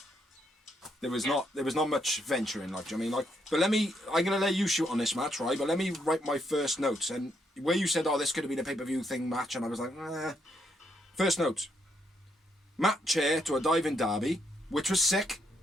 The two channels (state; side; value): normal; both; correlation 0.76